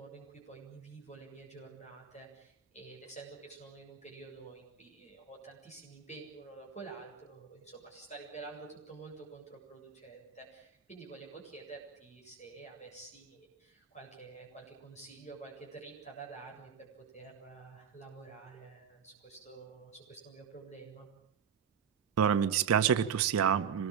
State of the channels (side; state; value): left; quieter; 7.6 dB